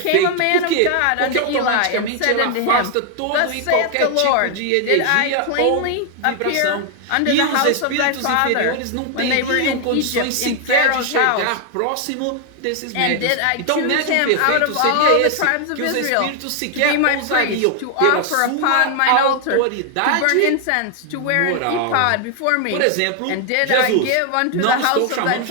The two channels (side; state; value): both; different; correlation 0.00